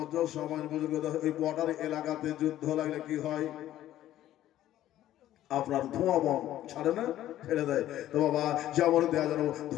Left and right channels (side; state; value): right; quieter; 13.2 dB